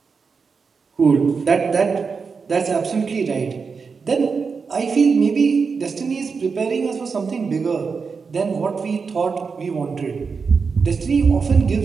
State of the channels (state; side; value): quieter; left; 5.2 dB